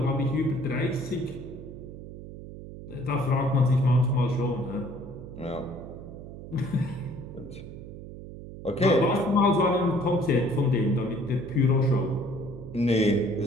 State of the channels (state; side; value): noise; right; hum, 13 dB below the sound